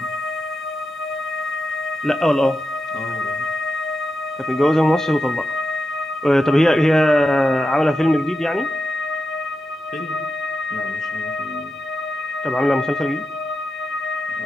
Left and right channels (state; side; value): normal; both; correlation 0.89